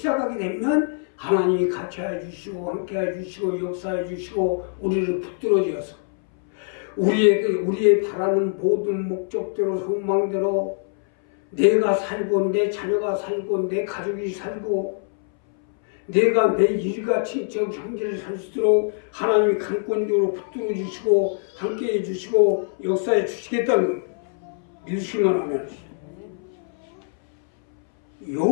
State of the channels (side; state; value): right; silent; 61 dB below the other